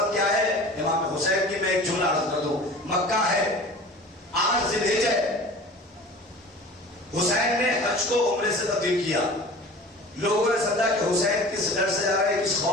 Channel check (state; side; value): normal; both; correlation 0.40